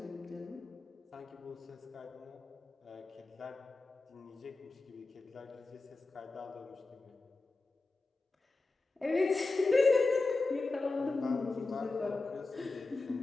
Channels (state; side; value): quieter; right; 3.5 dB